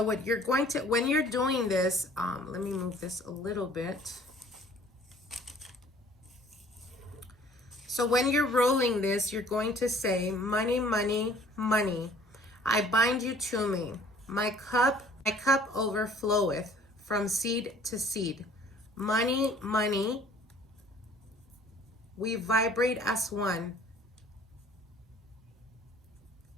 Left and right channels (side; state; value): both; normal; correlation 0.53